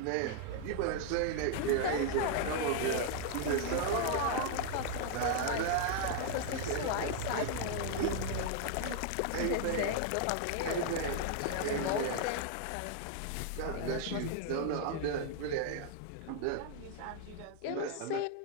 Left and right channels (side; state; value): both; different; correlation 0.00